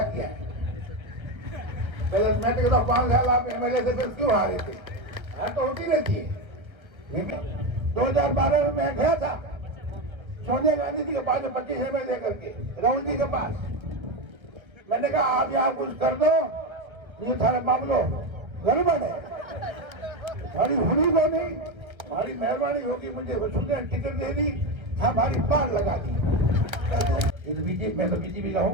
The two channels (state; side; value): late; left; 1.4 ms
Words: किया है? मैं तो कहता 5 साल आप एमएलए थे फिर क्यों हारे थे? हार तो होती रहती है। 2012 में मैं गया था सोनिया गांधी जी के पास 25 रुपए दे करके राहुल जी के पास। मैंने कहा आप यहाँ कुछ कर दो, ये थारे मामलो गड़बड़ है, हमारी हुई को नहीं, हमारी मेहरबानी होगी, मुझे वसुंधरा टिकट दे दी, हमारी बात लगा दी। ये तो बीजेपी, मैं तो बीजेपी का